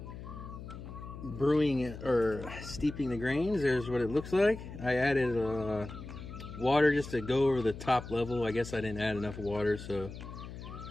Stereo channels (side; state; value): left; noise; hum, 11 dB below the sound